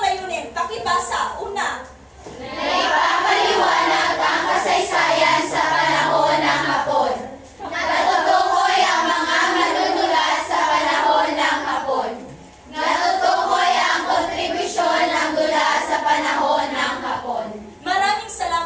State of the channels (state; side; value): identical; both; correlation 1.00